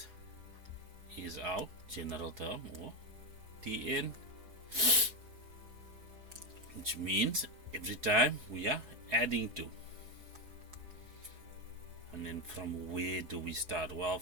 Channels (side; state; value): left; late; 4.8 ms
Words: is our general term, or Tn, which means every time we are adding 2. And then from where do we start? Well,